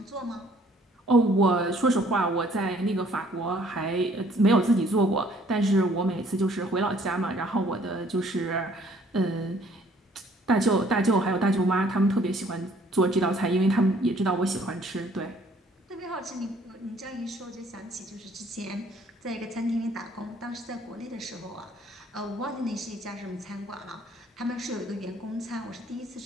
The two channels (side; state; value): both; normal; correlation 0.60